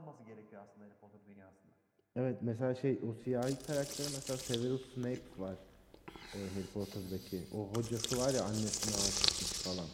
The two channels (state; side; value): identical; both; correlation 1.00